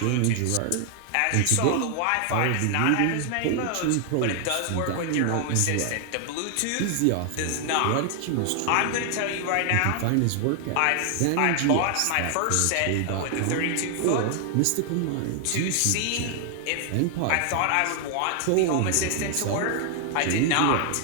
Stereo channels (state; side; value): different; both; correlation 0.00